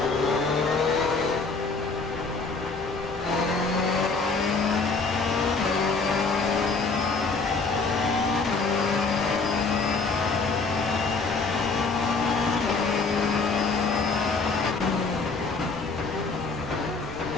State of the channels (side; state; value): right; quieter; 4.2 dB